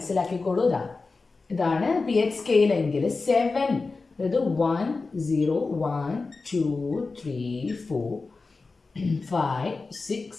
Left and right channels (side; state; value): right; quieter; 4.0 dB